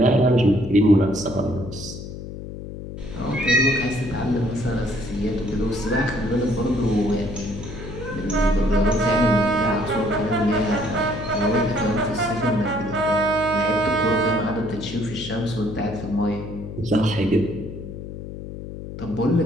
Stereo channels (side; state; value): left; noise; hum, 10 dB below the sound